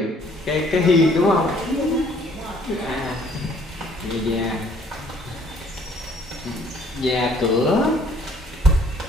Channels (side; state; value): both; normal; correlation 0.60